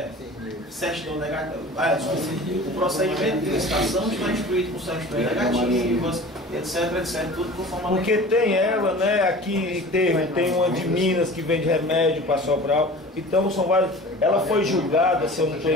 certidão negativa. O procedimento de licitação está instruído com certidões negativas, etc, tudo conforme. Porque tem ela, né? Aqui tem uma de Minas que vende remédio para Sobral. Então são vários. Ela foi julgada, se eu não estou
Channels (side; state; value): both; normal; correlation 0.40